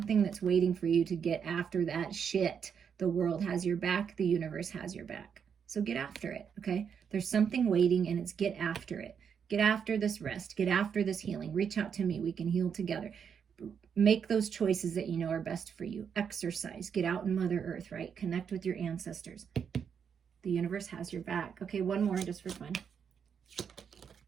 that's waiting for you to get after that shit. The world has your back. The universe has your back. So get after it, okay? There's something waiting, and it's get after it. Get after this rest. Get after this healing. Reach out to me. We can heal together. Make those choices that you know are best for you. Exercise. Get out in Mother Earth, right? Connect with your ancestors. The universe has your back. Okay, one more just for fun.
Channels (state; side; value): quieter; left; 7.2 dB